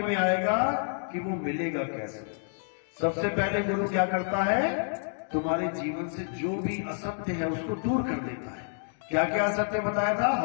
आएगा कि वो मिलेगा कैसे। सबसे पहले गुरु क्या करता है? तुम्हारे जीवन से जो भी असत्य है उसको दूर कर देता है। क्या क्या असत्य बताया था?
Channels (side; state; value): right; silent; digital silence